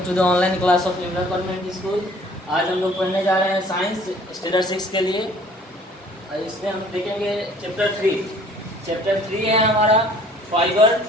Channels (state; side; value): normal; both; correlation 0.54